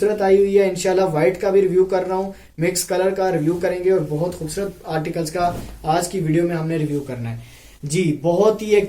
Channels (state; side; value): identical; both; correlation 1.00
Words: आई हुई है। इंशाल्लाह व्हाइट का भी रिव्यू कर रहा हूँ, मिक्स कलर का रिव्यू करेंगे, और बहुत खूबसूरत आर्टिकल्स का आज की वीडियो में हमने रिव्यू करना है जी। बहुत ही एक